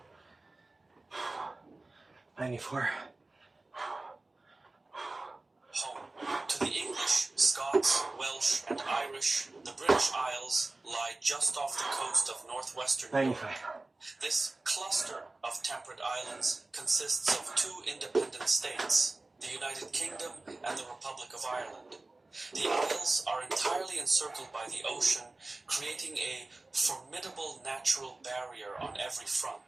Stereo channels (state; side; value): quieter; left; 3.1 dB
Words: 94. Home. To the English, Scots, Welsh, and Irish, the British Isles lie just off the coast of northwestern Europe. 95. This cluster of temperate islands consists of two independent states, the United Kingdom and the Republic of Ireland. The isles are entirely encircled by the ocean, creating a formidable natural barrier on every